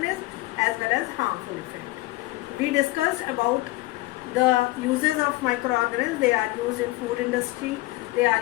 as well as harmful effect. We discussed about the uses of microorganisms. They are used in food industry, they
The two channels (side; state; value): right; quieter; 19.7 dB